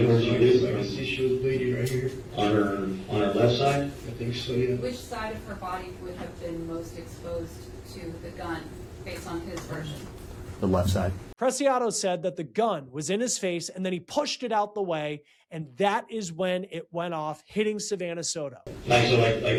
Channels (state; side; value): identical; both; correlation 1.00